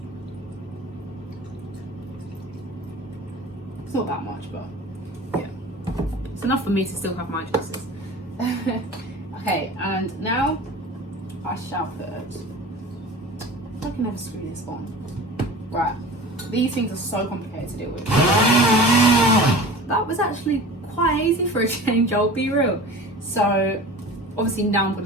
It's not that much, but yeah, it's enough for me to still have my juices. Okay, and now I shall put, I can never screw this on. Right, these things are so complicated to deal with. That was actually quite easy for a change, I'll be real. So obviously now I'm going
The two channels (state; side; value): normal; both; correlation 0.38